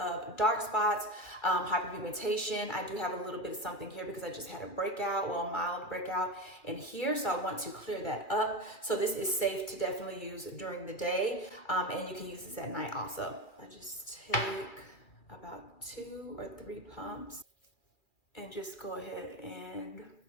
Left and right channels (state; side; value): late; right; 2.4 ms